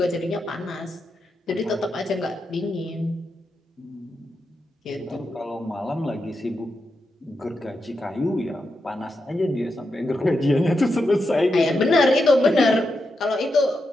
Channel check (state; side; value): normal; both; correlation 0.86